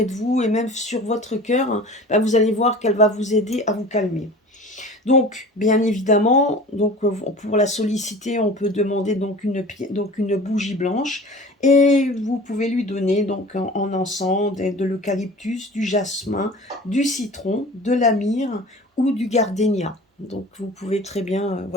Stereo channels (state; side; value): normal; both; correlation 0.40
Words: de vous et même sur votre cœur, hein, ben vous allez voir qu'elle va vous aider à vous calmer. Donc, bien évidemment, donc, pour la solliciter, on peut demander donc une bougie blanche et vous pouvez lui donner donc en encens de l'eucalyptus, du jasmin, du citron, de la myrrhe ou du gardénia. Donc vous pouvez très bien,